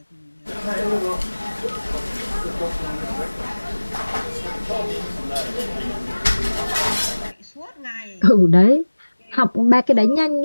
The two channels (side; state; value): both; inverted; correlation -1.00